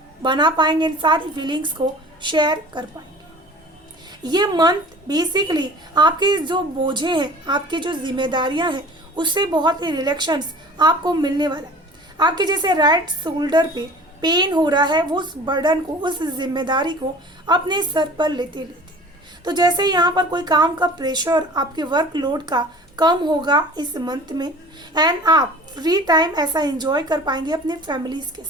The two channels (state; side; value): normal; both; correlation 0.44